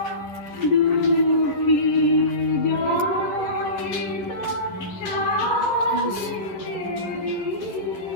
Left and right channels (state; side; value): late; right; 11 ms